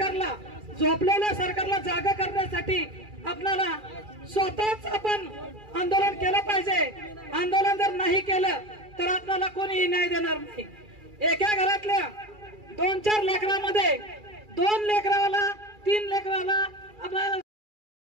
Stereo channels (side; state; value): left; late; 2.4 ms